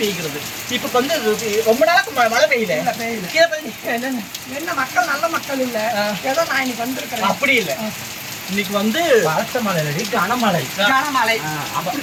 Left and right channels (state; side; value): identical; both; correlation 1.00